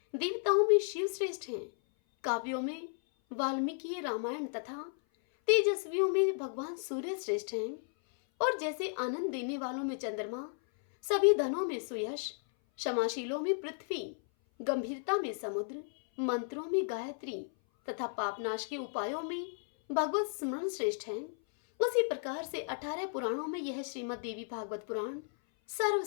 देवताओं में शिव श्रेष्ठ हैं, काव्यों में वाल्मीकि रामायण तथा तेजस्वियों में भगवान सूर्य श्रेष्ठ हैं, और जैसे आनंद देने वालों में चंद्रमा, सभी धनों में सुयश, क्षमाशीलों में पृथ्वी, गंभीरता में समुद्र, मंत्रों में गायत्री तथा पापनाश के उपायों में भगवत स्मरण श्रेष्ठ हैं, उसी प्रकार से 18 पुराणों में यह श्रीमद् देवी भागवत पुराण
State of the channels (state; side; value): silent; right; 55 dB below the other